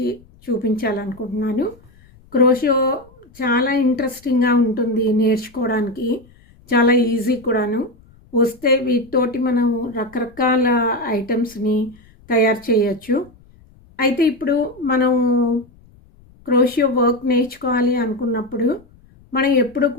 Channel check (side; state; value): left; noise; rumble, 27 dB below the sound